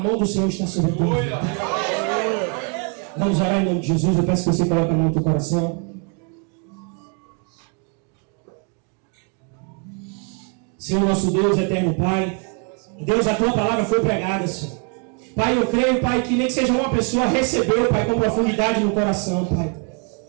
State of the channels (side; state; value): left; quieter; 37.7 dB